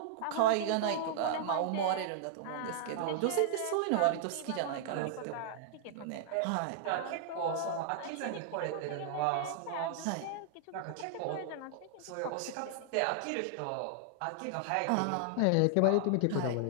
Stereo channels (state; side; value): different; both; correlation -0.01